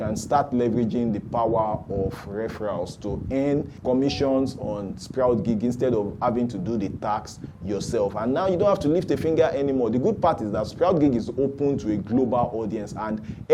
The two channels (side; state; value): both; identical; correlation 1.00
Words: start leveraging the power of referrals to earn commissions on SproutGigs instead of having to do the tax yourself. And now you don't have to lift a finger anymore. The good part is that SproutGigs is open to a global audience and